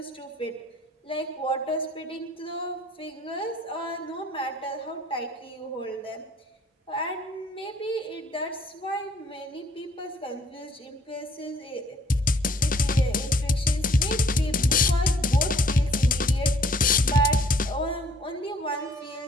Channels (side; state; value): both; normal; correlation 0.60